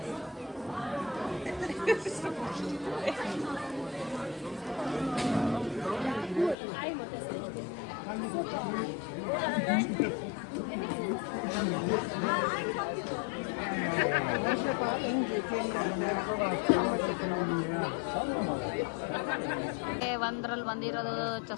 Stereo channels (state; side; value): drops out; right; at 6.6 s